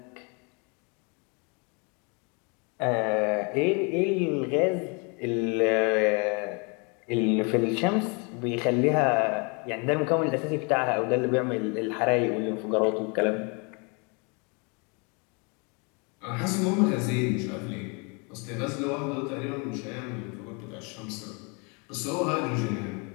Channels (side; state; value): right; quieter; 33.1 dB